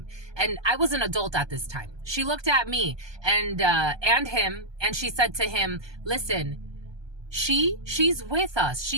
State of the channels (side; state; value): left; late; 1.2 ms